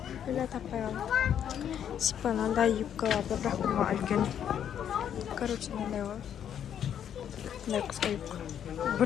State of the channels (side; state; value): right; quieter; 9.3 dB